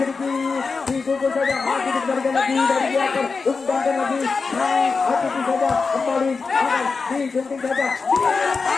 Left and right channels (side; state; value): right; quieter; 4.6 dB